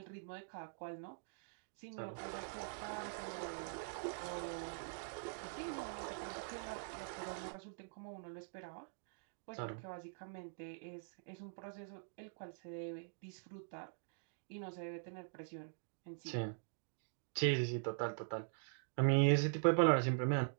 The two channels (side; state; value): left; silent; digital silence